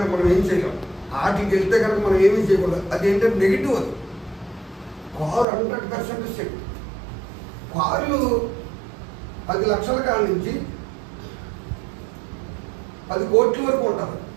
మనం ఏం చేయలేం. వాటికి వెళ్తే కనుక మనం ఏమీ చేయకూడదు. అది ఏంటంటే నెగిటివ్. అది కారు 100% సేఫ్టీ. కార్లు 10 లక్షల కాడ నుంచి 10 కోట్ల వరకు ఉంటారు.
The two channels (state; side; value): drops out; left; at 5.5 s